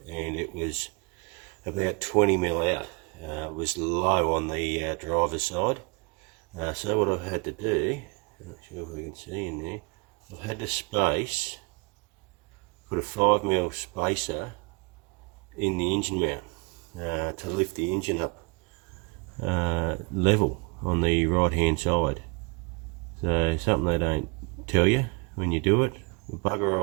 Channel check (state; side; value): quieter; left; 32.2 dB